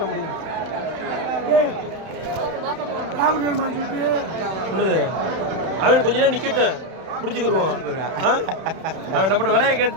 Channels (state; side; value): late; left; 31 ms